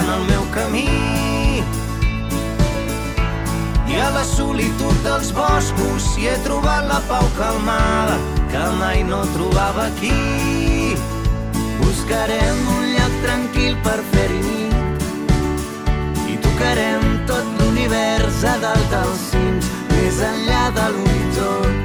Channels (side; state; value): both; identical; correlation 1.00